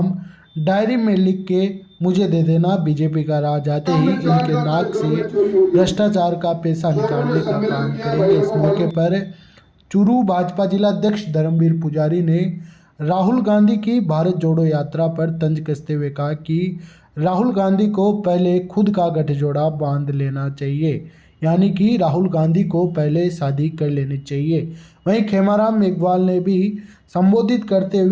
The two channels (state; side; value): identical; both; correlation 1.00